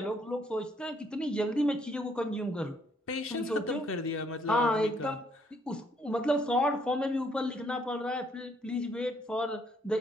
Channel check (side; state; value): both; normal; correlation 0.68